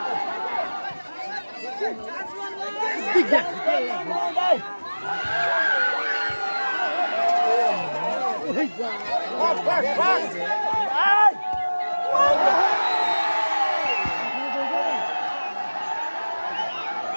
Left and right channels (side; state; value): both; inverted; correlation -1.00